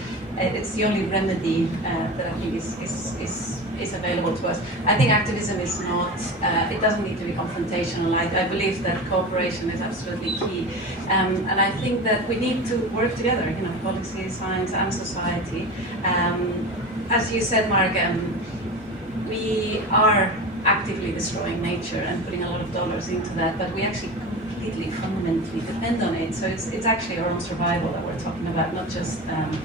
it's the only remedy that I think is available to us. I think activism is not, it doesn't need to be confrontational. I believe that cooperation is absolutely key. And I think that we need to work together, policy, science and society. As you said, Mark, we are actively destroying nature and putting a lot of dollars into that, but we actually completely, fundamentally depend on it. So it's actually our own survival that we're talking about, not just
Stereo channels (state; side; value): normal; both; correlation 0.29